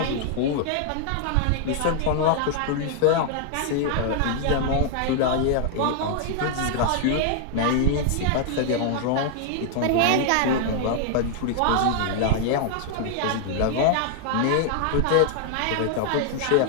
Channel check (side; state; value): both; different; correlation 0.00